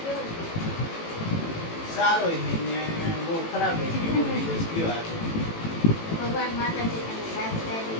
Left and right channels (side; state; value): right; late; 18 ms